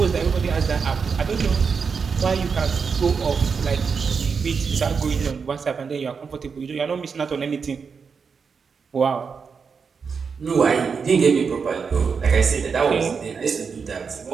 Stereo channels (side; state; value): left; quieter; 5.7 dB